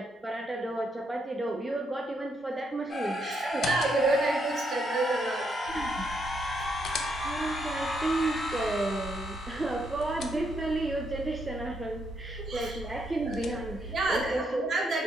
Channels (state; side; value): normal; both; correlation 0.76